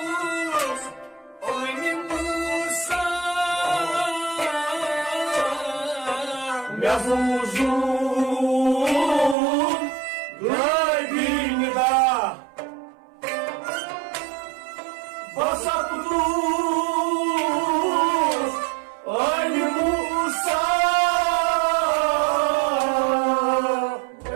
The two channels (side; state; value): left; drops out; at 9.3 s